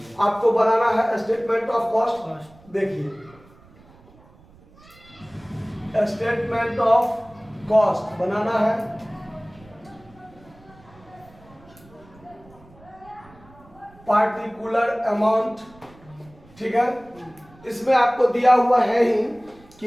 आपको बनाना है स्टेटमेंट ऑफ कॉस्ट। देखिए स्टेटमेंट ऑफ कॉस्ट बनाना है। पार्टिकुलर अमाउंट, ठीक है। इसमें आपको दिया हुआ है ही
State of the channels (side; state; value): right; noise; rumble, 26 dB below the sound